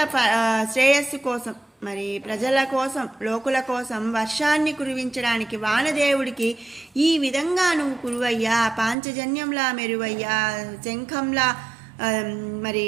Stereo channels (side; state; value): left; drops out; at 9.0 s